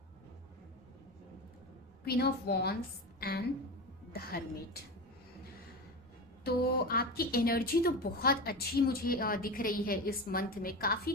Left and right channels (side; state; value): both; normal; correlation 0.24